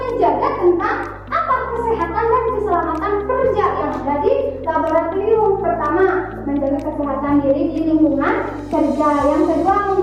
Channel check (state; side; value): identical; both; correlation 1.00